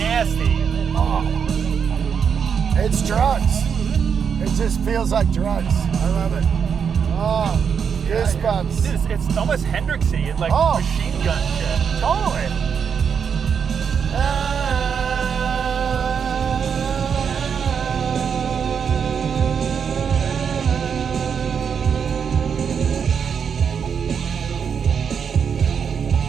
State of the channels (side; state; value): left; quieter; 6.9 dB